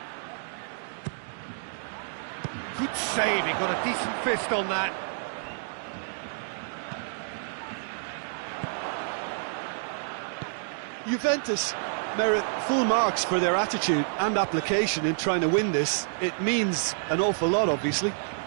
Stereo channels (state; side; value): silent; left; digital silence